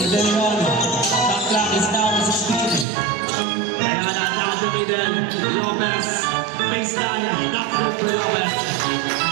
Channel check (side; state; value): left; drops out; at 2.9 s